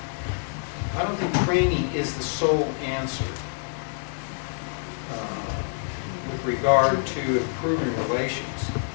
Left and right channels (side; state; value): right; silent; 56 dB below the other